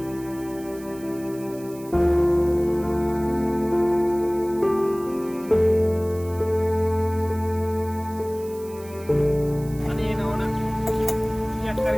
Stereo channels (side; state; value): right; noise; hiss, 21 dB below the sound